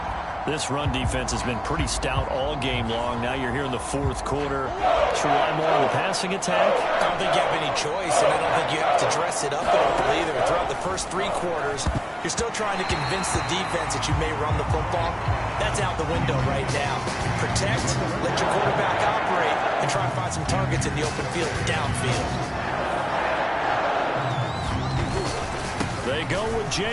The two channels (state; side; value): identical; both; correlation 1.00